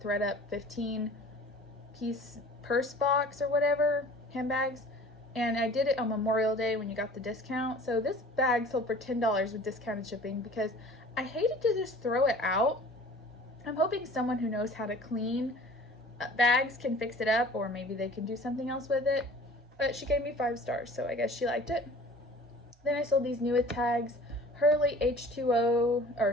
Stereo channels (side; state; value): both; normal; correlation 0.45